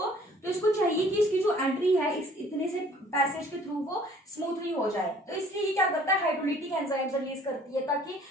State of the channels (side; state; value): both; normal; correlation 0.55